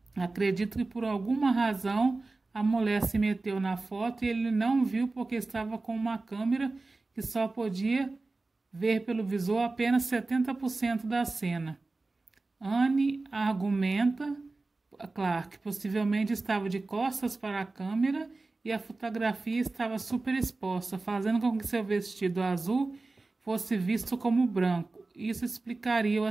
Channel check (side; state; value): left; quieter; 3.4 dB